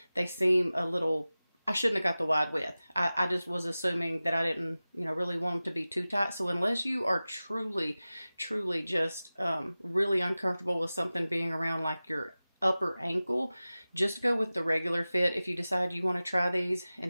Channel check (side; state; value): both; inverted; correlation -0.97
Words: they seem a little... I shouldn't have got the wide width. I just was assuming that I didn't, really want them to be too tight. So unless you are truly just really uncomfortable with something being around like your upper ankle, just go with the regular fit if you decide you want to try these